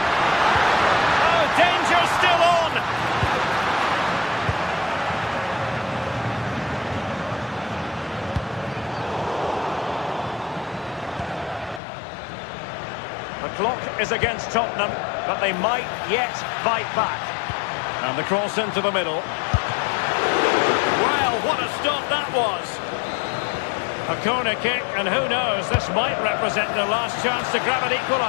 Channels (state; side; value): drops out; right; at 11.8 s